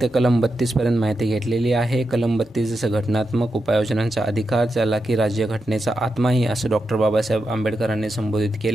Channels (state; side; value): normal; both; correlation 0.87